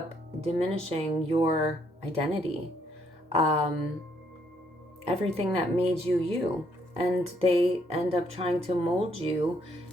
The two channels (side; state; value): both; normal; correlation 0.71